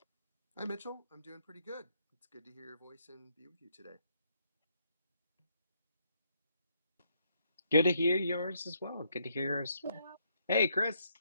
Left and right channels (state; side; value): inverted; both; correlation -0.74